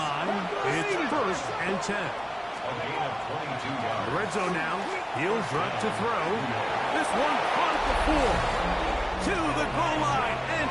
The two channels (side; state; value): both; identical; correlation 1.00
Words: it's 1st and 10. A gain of 22 yards. The red zone now. He'll drop to throw. This one caught at the 4. To the goal line and